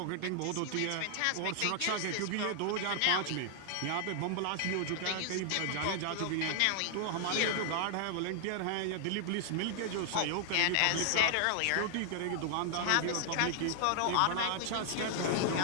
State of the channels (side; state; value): both; different; correlation 0.00